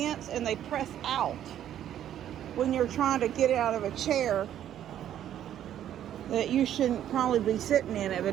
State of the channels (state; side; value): quieter; left; 10.9 dB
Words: and they press out when you're trying to get out of a chair that you shouldn't probably be sitting in,